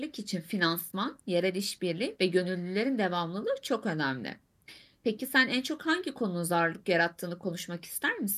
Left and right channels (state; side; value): identical; both; correlation 1.00